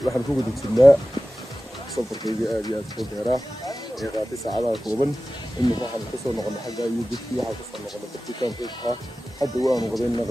waxaan ku guda jirnaa safarkaygii aad iyo aad u dheeraa ee qaatay saacadaha kooban imika waxaan kasoo noqonay xagga iyo dadkii waxaan kasoo noqonay dadkii kaamkayga ahaa hadda waanu qadaynaa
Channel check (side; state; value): both; normal; correlation 0.95